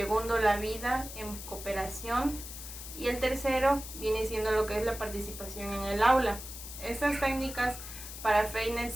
la vida en cooperación y el tercero viene siendo lo que es la participación en el aula. Estas técnicas para Freire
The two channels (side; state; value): left; noise; hiss, 11 dB below the sound